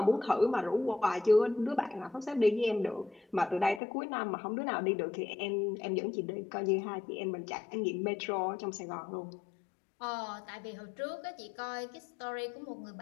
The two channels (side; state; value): right; drops out; at 3.8 s